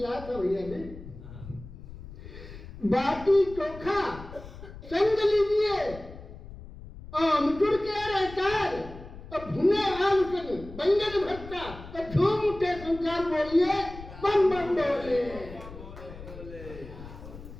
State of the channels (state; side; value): noise; left; rumble, 15 dB below the sound